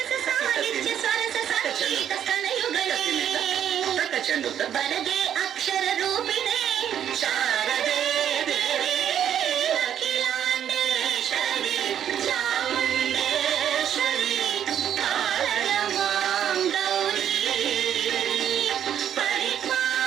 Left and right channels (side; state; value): left; quieter; 9.7 dB